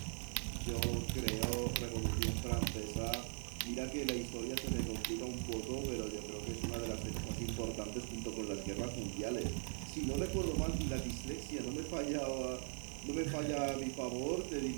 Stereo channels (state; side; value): silent; left; 51 dB below the other